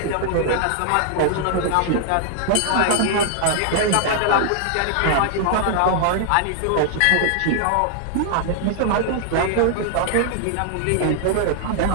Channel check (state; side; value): different; both; correlation 0.00